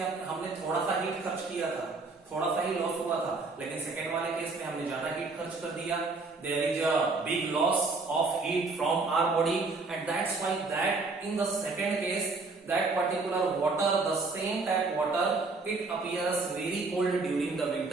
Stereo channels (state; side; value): quieter; left; 3.8 dB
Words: हमने थोड़ा सा हीट खर्च किया था, थोड़ा सा ही लॉस हुआ था, लेकिन सेकेंड वाले केस में हमने ज्यादा हीट खर्च कर दिया। There is a big loss of heat from our body and that's why that in the second case that particular water, the same tap water, it appears very cold during the